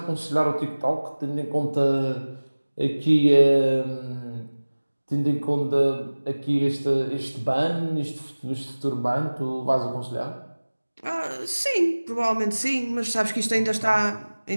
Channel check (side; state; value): both; inverted; correlation -1.00